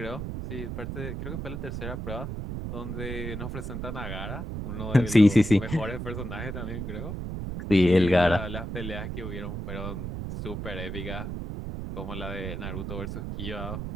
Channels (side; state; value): right; noise; rumble, 5 dB below the sound